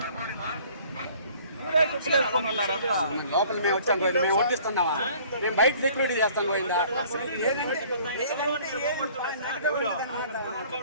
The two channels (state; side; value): inverted; both; correlation -0.54